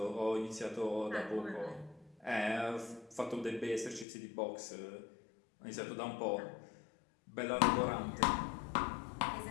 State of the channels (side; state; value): right; drops out; at 4.0 s